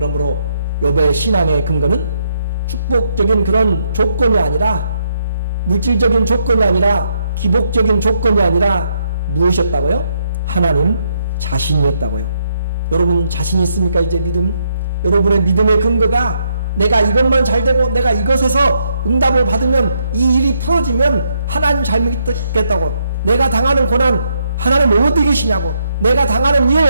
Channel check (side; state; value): both; inverted; correlation -0.75